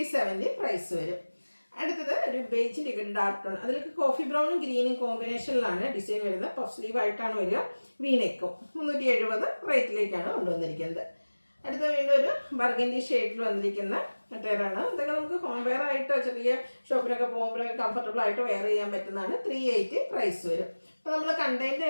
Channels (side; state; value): both; inverted; correlation -1.00